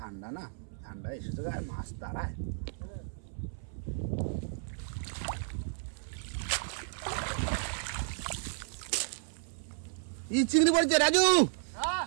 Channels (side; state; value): left; silent; 55 dB below the other